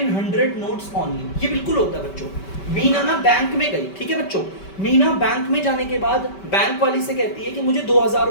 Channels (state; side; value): late; right; 5.2 ms